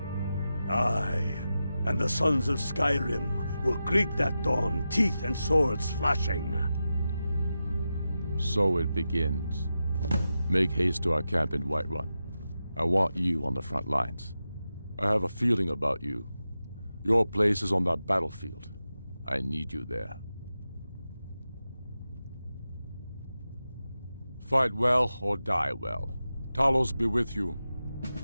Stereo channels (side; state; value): both; inverted; correlation -0.91